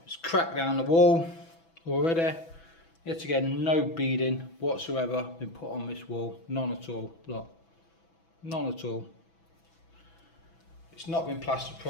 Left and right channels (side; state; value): right; late; 6.0 ms